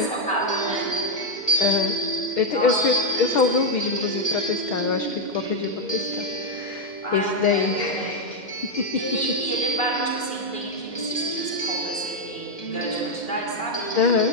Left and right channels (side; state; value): right; late; 2.8 ms